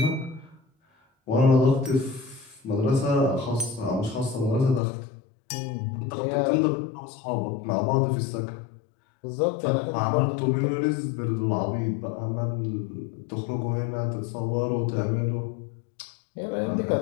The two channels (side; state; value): right; drops out; at 4.8 s